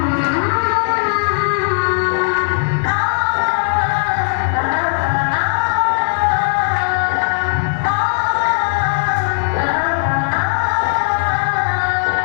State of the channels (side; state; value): right; silent; digital silence